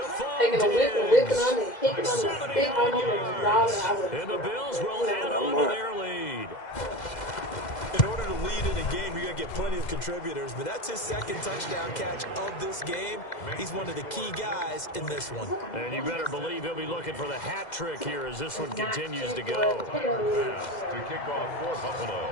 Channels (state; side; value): late; right; 2.0 ms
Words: a whip and whipping them and kicking them and spitting on them and drawing. And the Bills will add on to their lead. In order to lead in a game, you're going to get plenty of contributors, but that's his 2nd touchdown catch of this game. He's one of the key guys in this one. And you better believe he'll be looking for the hat trick here as this one continues to go. Bass to kick off for Buffalo.